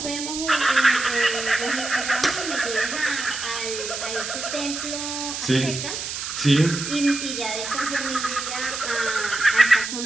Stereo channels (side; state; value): right; noise; hiss, 5 dB below the sound